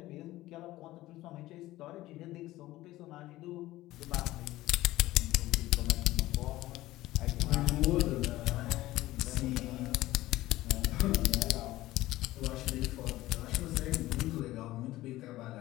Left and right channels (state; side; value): quieter; right; 16.7 dB